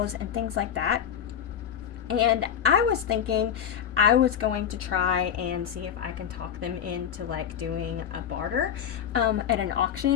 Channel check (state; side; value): quieter; right; 8.9 dB